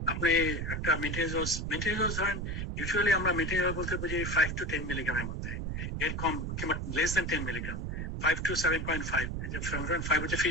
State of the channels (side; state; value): right; noise; rumble, 3 dB below the sound